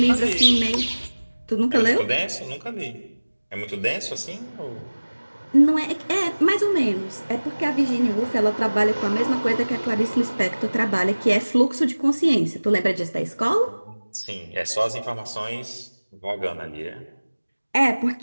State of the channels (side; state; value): both; inverted; correlation -1.00